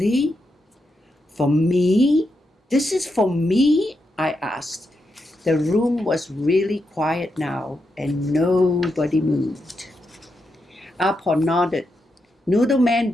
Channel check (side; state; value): both; normal; correlation 0.85